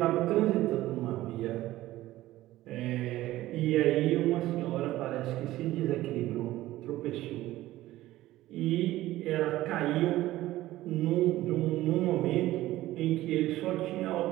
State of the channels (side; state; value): left; quieter; 16.0 dB